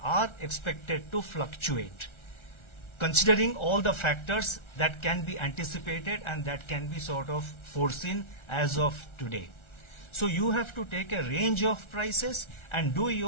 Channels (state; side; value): late; right; 1.4 ms